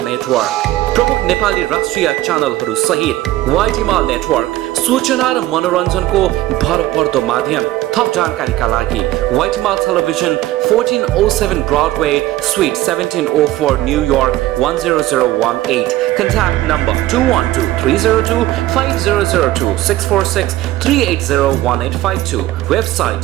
नेटवर्क प्रमुख नेपाली राष्ट्रिय च्यानलहरू सहित व्हाइट हिमाल नेटवर्क सूचना र मनोरञ्जनको भरपर्दो माध्यम थप जानकारीका लागि व्हाइट हिमाल television 1407 Broadway Suite 1704 New York 10018 contact number 212-302-5002-646-380-1852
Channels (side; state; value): left; quieter; 15.7 dB